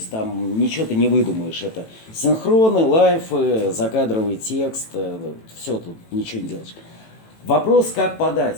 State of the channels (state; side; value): late; right; 18 ms